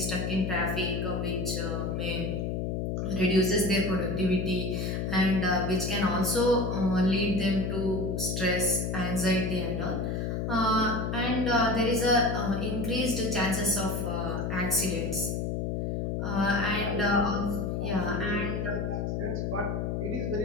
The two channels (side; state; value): left; noise; hum, 1 dB below the sound